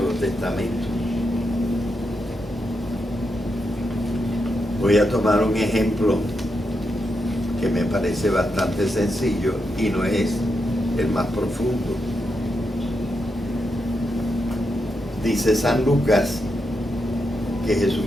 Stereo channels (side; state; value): both; normal; correlation 0.84